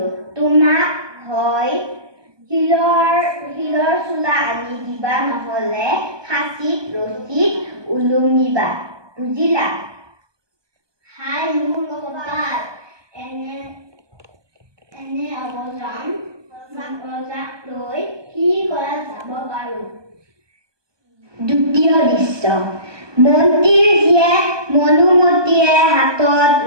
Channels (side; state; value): left; late; 1.2 ms